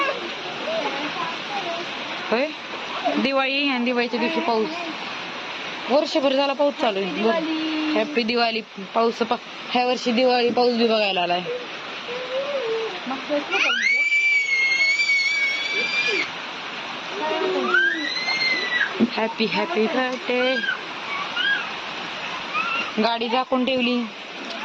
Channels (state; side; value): identical; both; correlation 1.00